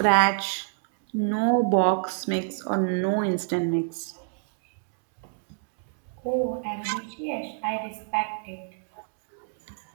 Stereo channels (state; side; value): silent; left; digital silence